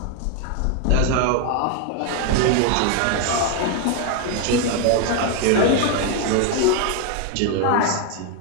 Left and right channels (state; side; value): different; both; correlation 0.01